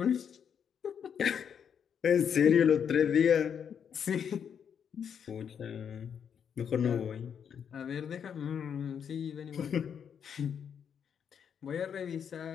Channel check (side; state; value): right; quieter; 7.7 dB